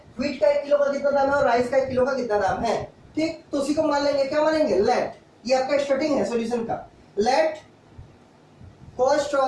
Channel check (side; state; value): both; identical; correlation 1.00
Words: व्हीट का 1 किलो का कितना दाम है और राइस का 1 किलो का कितना दाम है। ठीक, तो उसी को मान लेंगे, क्या मानेंगे, लेट, ये आपका स्टार्टिंग है सॉल्यूशन का, let cost